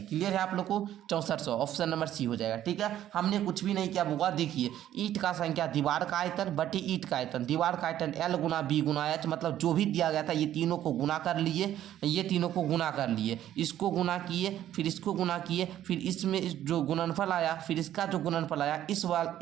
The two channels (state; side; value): quieter; left; 11.9 dB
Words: क्लियर है आप लोग को, 6400 ऑप्शन नंबर सी हो जाएगा। ठीक है, हमने कुछ भी नहीं किया बुआ, देखिए ईट का संख्या दीवार का आयतन बटे ईट का आयतन, दीवार का आयतन L गुना B गुना H, मतलब जो भी दिया गया था ये तीनों को गुना कर लिए, ये तीनों को गुना कर लिए, इसको गुना किए, फिर इसको गुना किए, फिर इसमें जो गुणनफल आया, फिर इसका जो गुणनफल आया, इस